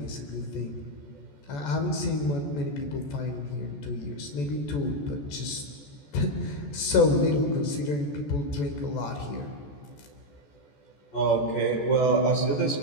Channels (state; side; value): late; right; 14 ms